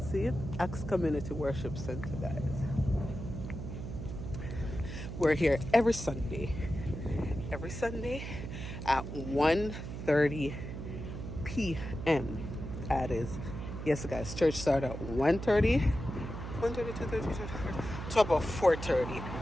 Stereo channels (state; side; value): noise; right; hum, 7 dB below the sound